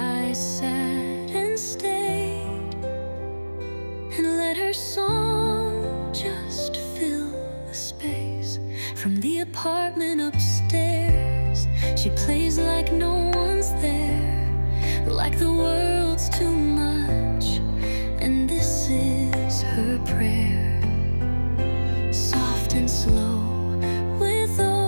sat and stayed and let her song just fill the space. From the apartment upstairs, she plays like no one's there, like the world's too much, and this is her prayer. Soft and slow with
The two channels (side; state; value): both; inverted; correlation -1.00